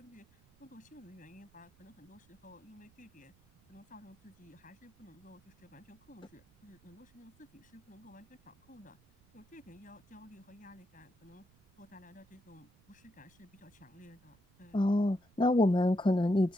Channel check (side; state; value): right; noise; rumble, 29 dB below the sound